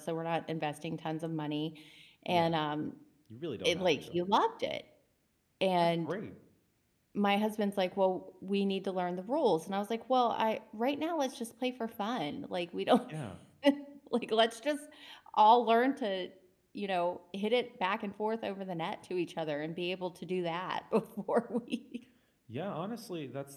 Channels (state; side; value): identical; both; correlation 1.00